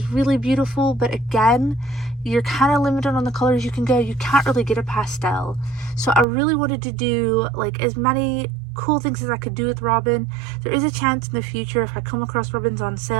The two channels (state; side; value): drops out; left; at 6.2 s